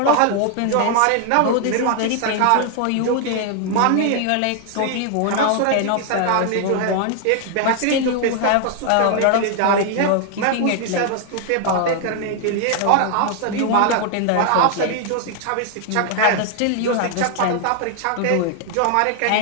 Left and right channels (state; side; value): different; both; correlation 0.00